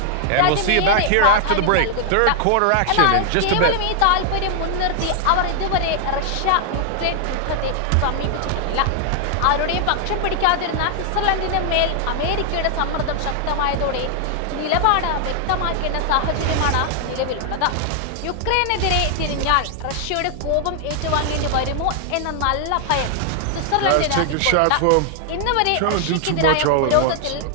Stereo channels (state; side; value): different; both; correlation 0.00